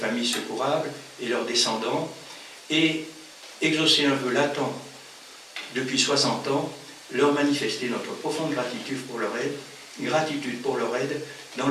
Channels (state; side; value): identical; both; correlation 1.00